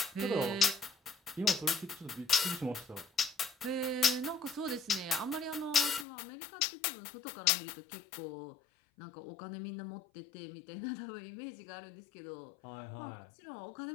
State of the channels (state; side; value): drops out; right; at 6.1 s